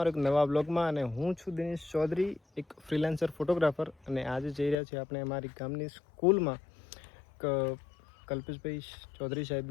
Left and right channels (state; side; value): drops out; right; at 4.8 s